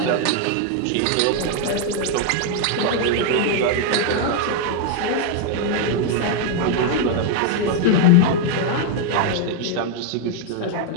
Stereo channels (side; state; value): both; different; correlation 0.00